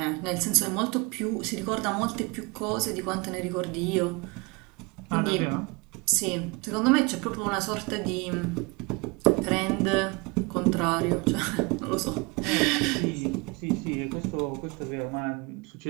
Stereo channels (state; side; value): quieter; left; 27.2 dB